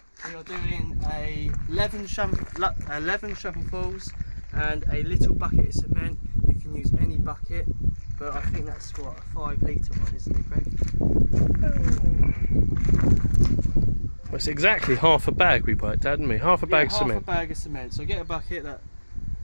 We are doing 11 shovelfuls and a little bucket of cement. You can use any bucket, but I think that's what, a 5 litre one, isn't it, Greg? Well, it's exactly half a bag we worked out, didn't we? Half a bag of cement. Half a bag of cement. So get a bucket that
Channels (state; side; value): inverted; both; correlation -1.00